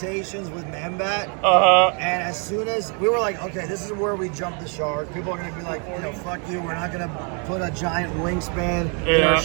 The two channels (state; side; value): quieter; left; 37.5 dB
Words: with Man-Bat, and as soon as we were like, okay, this is where we jump the shark. People are gonna be like, fuck you, we're not gonna put a giant wingspan in our